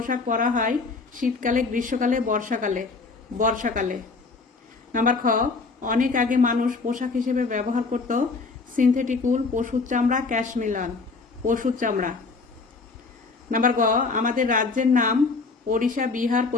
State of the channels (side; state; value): right; quieter; 4.2 dB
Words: परा हय शीतकाले, ग्रीष्मकाले, बर्षाकाले। बर्षाकाले। नम्बर ख अनेक आगे मानुष पोशाक हिसेबे व्यवहार करत सिंथेटिक उल, पशुर चामड़ा, कैशमिलान, पशुर चामड़ा। नम्बर ग आमादेर राज्येर नाम ओडिशा, बिहार,